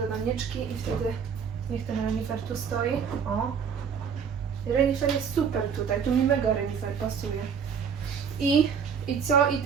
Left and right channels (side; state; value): left; quieter; 6.8 dB